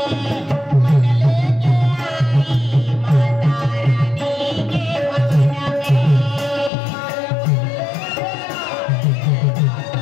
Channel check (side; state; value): right; drops out; at 6.7 s